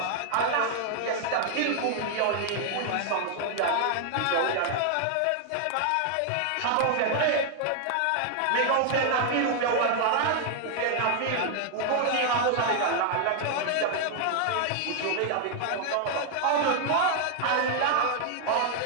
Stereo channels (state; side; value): different; both; correlation 0.00